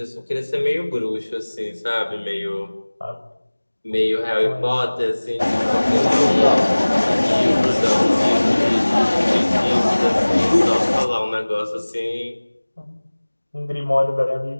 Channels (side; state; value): both; inverted; correlation -1.00